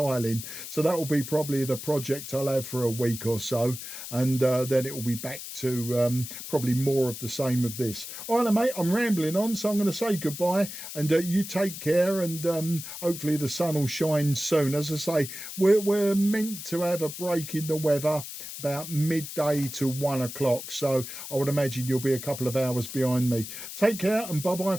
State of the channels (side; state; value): left; noise; hiss, 10 dB below the sound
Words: So that will be probably the project I'll have for a week or so, and then it will be back to probably more of the same of this. All right, mate, I'm rambling on, so I'm going to say goodbye, and you take care, and hopefully the sun will shine soon. As I say, we're meant to have a break in the weather about midday to 1 o'clock, so I would imagine you'll be a couple of hours behind me. Take care, and bye bye